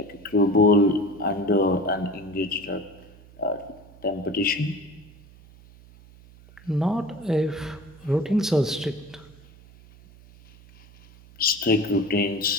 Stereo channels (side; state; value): right; noise; hum, 23 dB below the sound